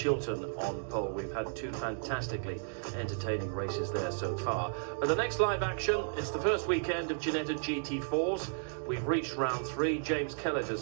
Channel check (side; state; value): left; silent; digital silence